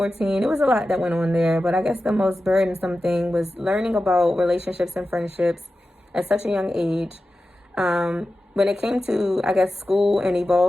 It was a lot that went on there, but I guess the most burdensome thing was learning about relationships and friendships at such a young age. When it came to, I guess, school and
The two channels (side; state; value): both; normal; correlation 0.93